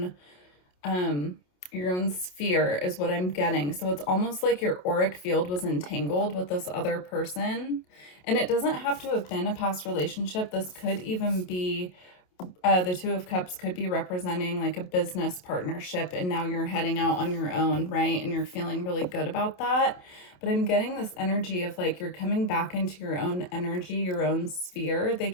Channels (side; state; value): right; late; 28 ms